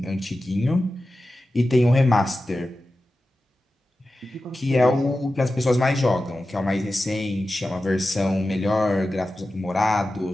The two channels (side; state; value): both; normal; correlation 0.93